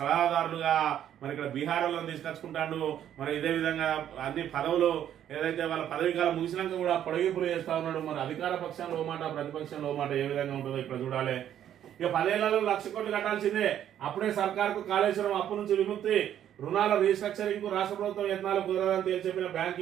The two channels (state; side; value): quieter; left; 10.5 dB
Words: మరి ఇక్కడ బీహార్లో తీసుకొచ్చుకుంటాడు. మరి ఇదే విధంగా అన్ని పదవులు ఏదైతే వాళ్ళ పదవి కాలం ముగిసినాక కూడా పొడిగింపులు చేస్తా ఉన్నాడు. మరి అధికార పక్షంలో మాట, ప్రతిపక్షంలో మాట ఏ విధంగా ఉంటుందో ఇక్కడ చూడాలి. ఇక 10 ఏళ్లలో 1,00,000 కోట్లు కట్టాల్సిందే. అప్పుడే సర్కార్కు కాళేశ్వరం అప్పు నుంచి విముక్తి, రుణాల రీస్ట్రక్చరింగ్ కు రాష్ట్ర ప్రభుత్వం యత్నాలు కుదరదని తేల్చెప్పిన